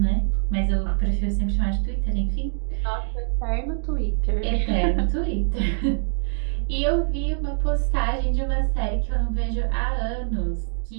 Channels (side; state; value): left; silent; digital silence